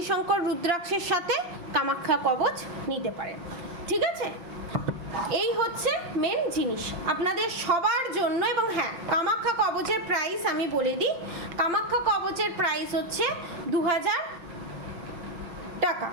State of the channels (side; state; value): left; late; 5.8 ms